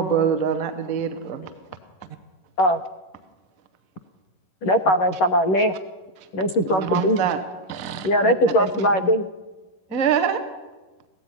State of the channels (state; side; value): late; right; 11 ms